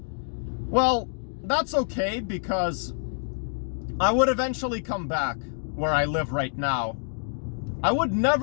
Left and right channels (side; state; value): right; silent; digital silence